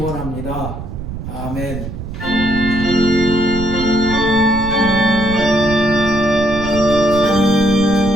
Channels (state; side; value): noise; right; rumble, 8 dB below the sound